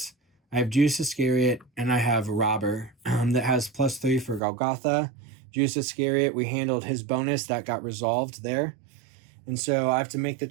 I have Judas Iscariot, and I have Robber that has +3 for Golgotha. Judas Iscariot, we handled his bonus. That got resolved there. And so I have to make the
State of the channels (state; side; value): drops out; left; at 4.4 s